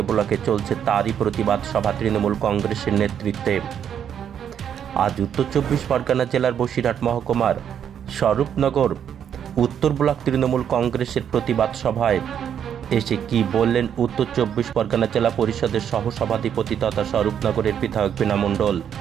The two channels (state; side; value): quieter; left; 8.8 dB